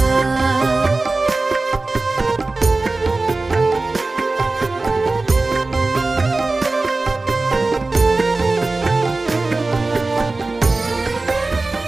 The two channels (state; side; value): quieter; left; 3.3 dB